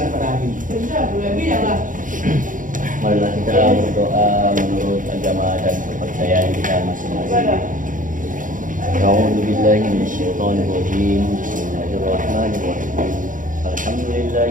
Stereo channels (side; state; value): left; late; 0.38 ms